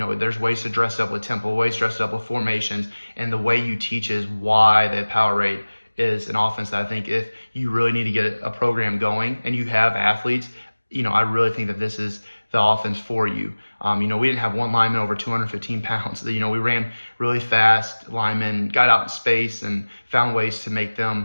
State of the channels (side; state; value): both; inverted; correlation -1.00